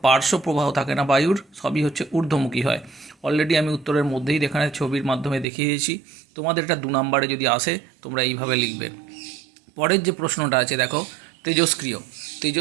পার্শ্ব প্রবাহ থাকে না বায়ুর, সবই হচ্ছে ঊর্ধ্বমুখী হয়। অলরেডি আমি উত্তরের মধ্যেই এখানে ছবির মাধ্যমে দেখিয়ে দিয়েছি। তোমাদের এটা 2 নম্বরে যদি আসে, তোমরা এইভাবে লিখবে। পরের যে প্রশ্নটা আছে দেখো, তেজস্ক্রিয়।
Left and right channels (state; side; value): drops out; left; at 5.5 s